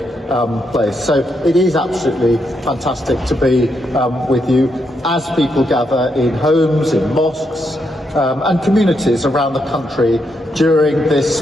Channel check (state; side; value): normal; both; correlation 0.80